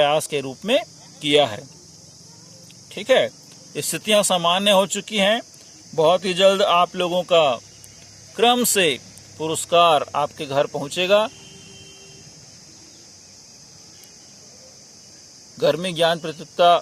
के रूप में किया है। ठीक है, स्थितियां सामान्य हो चुकी हैं। बहुत ही जल्द आप लोगों का क्रम से पुरस्कार आपके घर पहुंचेगा। गर्मी ज्ञान प्रतियोगिता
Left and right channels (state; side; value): identical; both; correlation 1.00